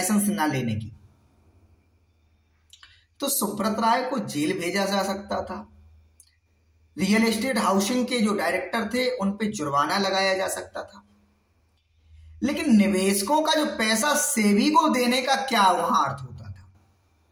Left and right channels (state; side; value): identical; both; correlation 1.00